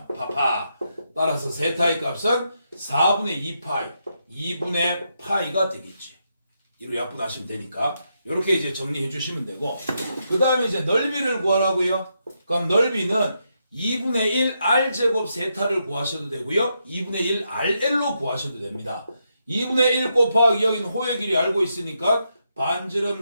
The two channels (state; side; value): inverted; both; correlation -0.82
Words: 파파. 따라서 세타의 값은 4분의 2파이, 2분의 파이가 되겠지. 이로 약분하시면 되니까 이렇게 이제 정리해 주시면 되고 그 다음에 이제 넓이를 구하라고요. 그럼 넓이는 2분의 1 r제곱 세타를 구하셔도 되고요. 2분의 1 rl로 구하셔도 됩니다. 2분의 1 곱하기 여기는 호의 길이 알고 있으니까 반지름